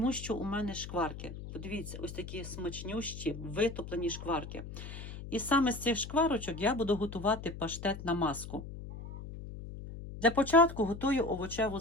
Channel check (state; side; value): noise; left; hum, 10 dB below the sound